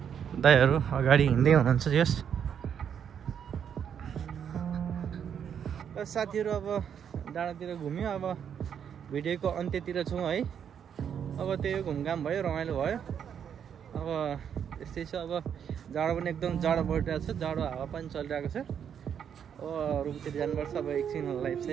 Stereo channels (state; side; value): quieter; left; 8.2 dB